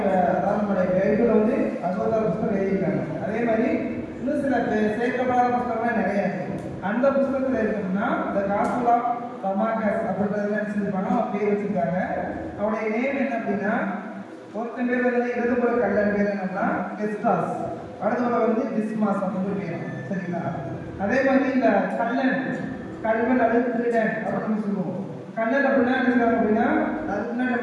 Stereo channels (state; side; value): identical; both; correlation 1.00